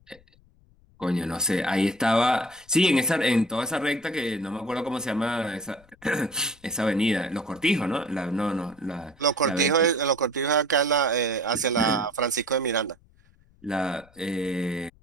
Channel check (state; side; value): noise; left; rumble, 29 dB below the sound